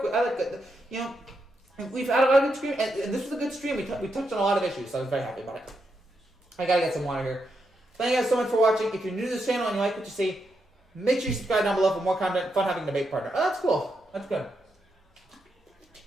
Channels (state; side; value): normal; both; correlation 0.83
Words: the, you know, we've had a lot of good stream, and this was a good stream. We touched on a lot of issues, so I was very happy about it. I gotta get some water here. Thank you guys so much for watching. If you're new to this channel and you like what you see, make sure you subscribe down below for more content. Fun having a debate partner. Oh, that's cool. That's good.